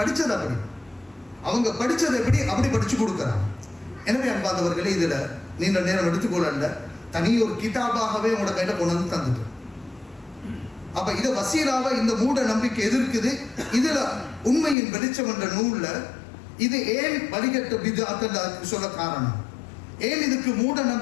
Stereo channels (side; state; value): right; drops out; at 14.8 s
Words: படிச்சது எப்படி அப்படி படிச்சு கொடுக்கிறாங்க. எனவே அன்பாதவர்களே, இதுல நீண்ட நேரம் எடுத்துக்கொள்ள தனி ஒரு கிதாபாகவே உங்களோட கையில கொண்டு வந்து தந்துட்டு. அப்ப இத வசீலாவை இந்த மூட நம்பிக்கை எதிர்க்குது. இதுல உண்மையின் வெளிச்சம் என்ற நூல்ல இது ஏன் வழிகட்ட பித்அத் சொல்ல காரணம், ஏன் இதுக்கு மூட